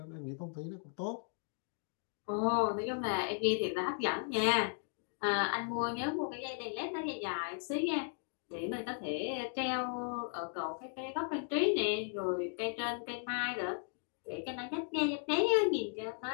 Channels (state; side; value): silent; right; 54 dB below the other